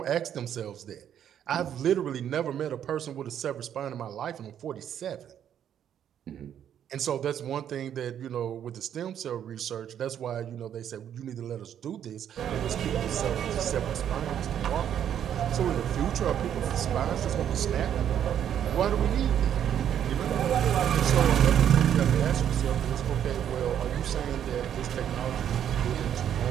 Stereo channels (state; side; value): quieter; left; 9.7 dB